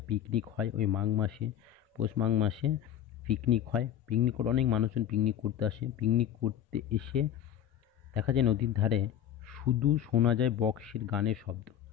পিকনিক হয় ওই মাঘ মাসে, পৌষ মাঘ মাসে পিকনিক হয়। পিকনিক করে অনেক মানুষজন পিকনিক করতে আসে। পিকনিক করতে এসে দেখা যায় নদীর ধারে শুধু শোনা যায় বক্সের গানের শব্দ।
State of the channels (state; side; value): quieter; right; 10.5 dB